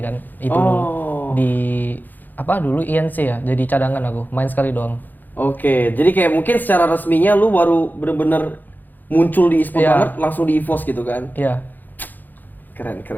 kan. Itu di dulu INC ya, jadi cadangan aku, main sekali doang. Oke, jadi kayak mungkin secara resminya lu baru bener-bener muncul di e-sport Iya. banget langsung di EVOS gitu kan. Iya. Keren.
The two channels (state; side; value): late; right; 0.086 ms